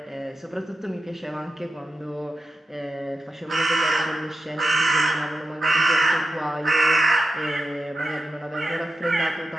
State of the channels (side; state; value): both; normal; correlation 0.90